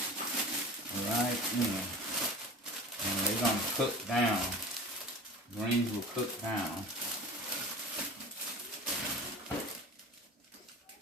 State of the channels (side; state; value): both; normal; correlation 0.37